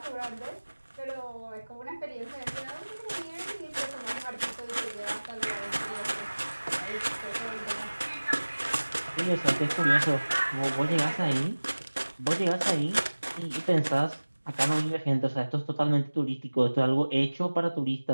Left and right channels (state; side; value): inverted; both; correlation -1.00